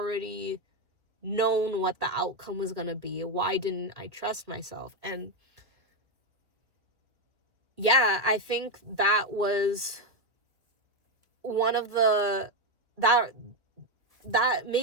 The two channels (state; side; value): late; left; 1.4 ms